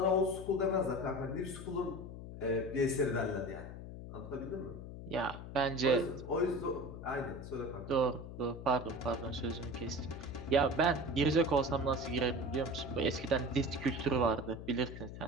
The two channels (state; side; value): noise; left; hum, 11 dB below the sound